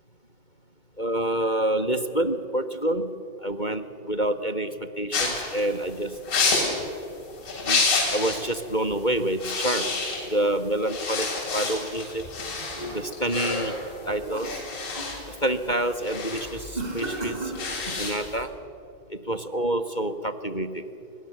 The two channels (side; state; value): right; late; 2.2 ms